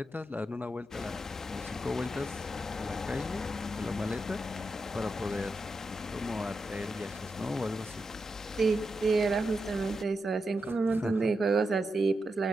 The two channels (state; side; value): normal; both; correlation 0.87